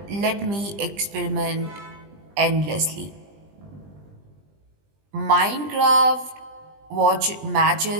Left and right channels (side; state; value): left; late; 20 ms